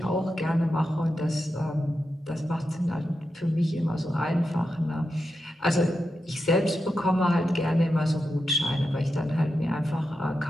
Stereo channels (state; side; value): normal; both; correlation 0.88